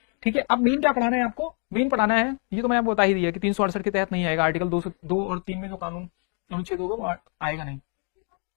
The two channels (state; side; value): quieter; right; 40.0 dB